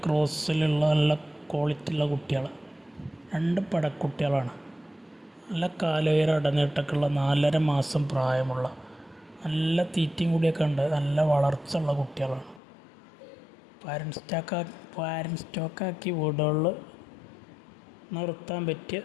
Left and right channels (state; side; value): drops out; right; at 12.6 s